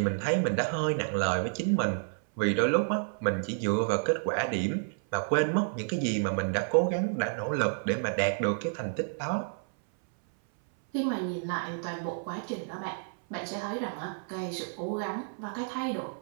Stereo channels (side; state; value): left; silent; 58 dB below the other